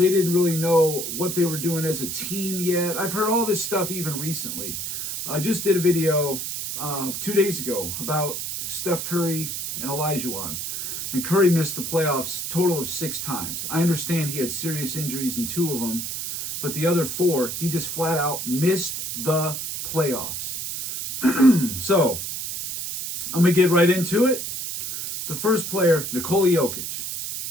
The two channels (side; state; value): right; noise; hiss, 5 dB below the sound